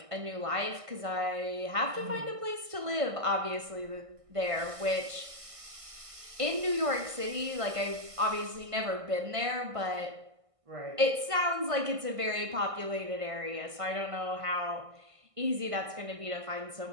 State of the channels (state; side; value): late; left; 1.5 ms